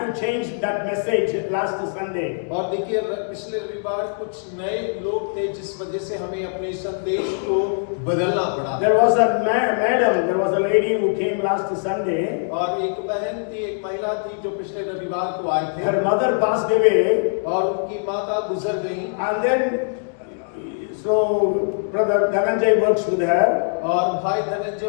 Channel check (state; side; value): silent; right; digital silence